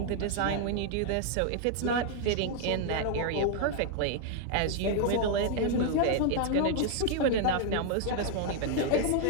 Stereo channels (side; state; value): both; different; correlation 0.00